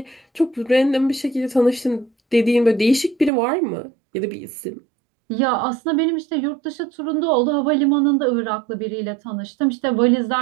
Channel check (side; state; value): left; drops out; at 3.3 s